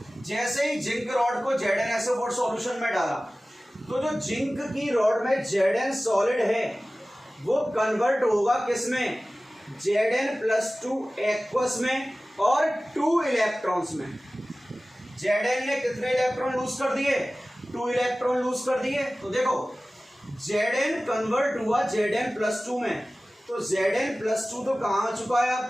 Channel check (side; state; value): both; normal; correlation 0.97